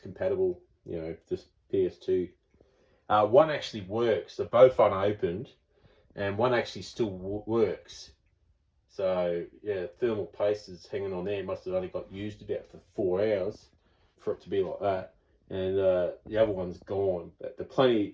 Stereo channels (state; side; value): identical; both; correlation 1.00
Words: You know, just PS2. One actually works. They're both unopened. And one actually still works. So yeah, thermal paste is hanging on there. Must have only got used about for 4 hours for it to be like that. And the other one's gone. But